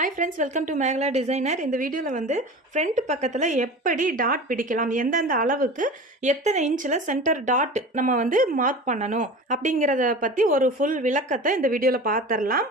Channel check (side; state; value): both; normal; correlation 0.35